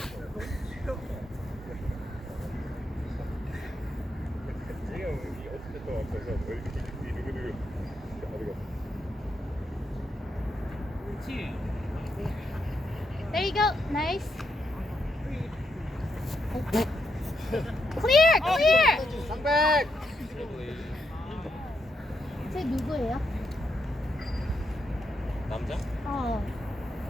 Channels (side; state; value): both; normal; correlation 0.81